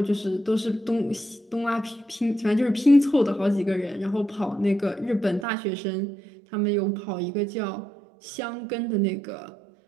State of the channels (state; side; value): drops out; left; at 5.5 s